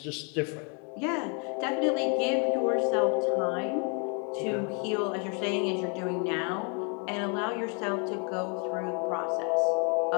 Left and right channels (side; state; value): right; quieter; 36.9 dB